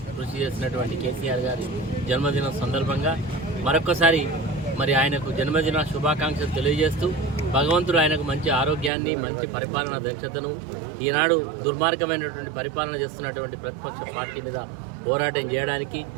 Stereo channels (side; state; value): left; drops out; at 8.9 s